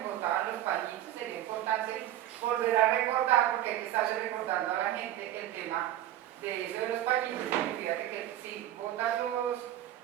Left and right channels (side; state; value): left; quieter; 12.8 dB